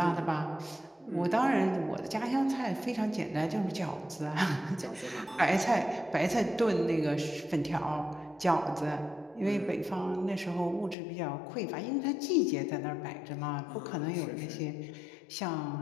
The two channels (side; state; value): right; drops out; at 11.0 s